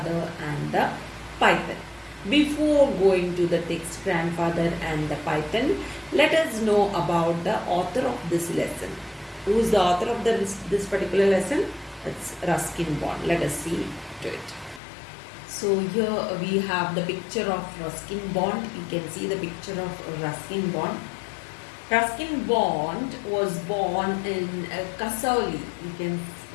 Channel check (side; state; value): right; drops out; at 14.8 s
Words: and the Python. Before going to the text, Grandfather and the Python, let us know about the author of this lesson. Who is the author of this particular lesson? It's Ruskin Bond. Let us see to it. So here we have the picture of Ruskin Bond. You can see the picture of Ruskin Bond. Ruskin Bond was born in Kasauli. You can